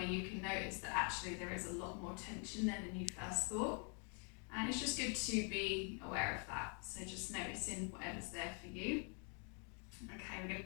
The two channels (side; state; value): right; quieter; 38.9 dB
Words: you can notice that actually there is a lot more tension there than you first thought. And it's just good to be aware of that. So just noticing whatever's there for you. Okay, we're going